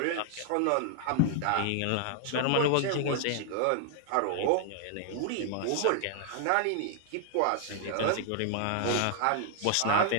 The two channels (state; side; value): different; both; correlation 0.00